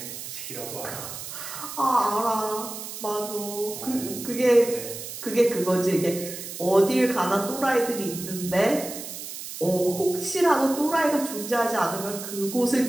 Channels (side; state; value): right; noise; hiss, 9 dB below the sound